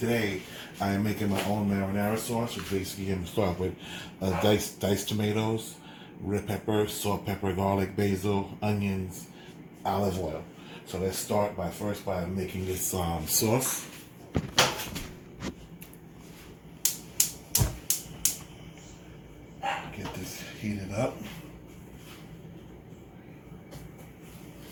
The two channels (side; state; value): both; identical; correlation 1.00